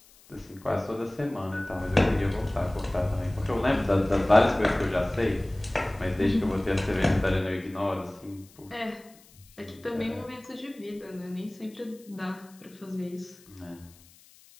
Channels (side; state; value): left; noise; hiss, 26 dB below the sound